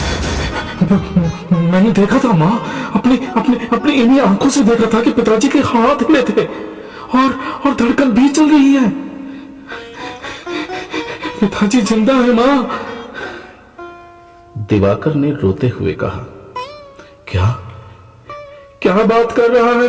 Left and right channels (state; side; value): identical; both; correlation 1.00